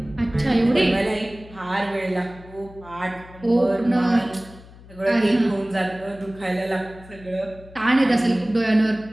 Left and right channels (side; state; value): left; noise; hum, 20 dB below the sound